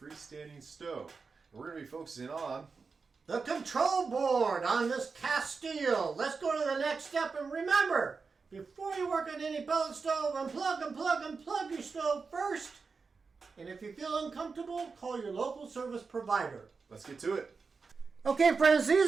stove. And we're going to be focusing on the control board on this Castile. Let's go to the next step, and remember, before you work on any pellet stove, unplug your stove first. And if you feel uncomfortable, call your local service provider. Let's get to it. Okay, friends,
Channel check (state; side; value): quieter; left; 4.8 dB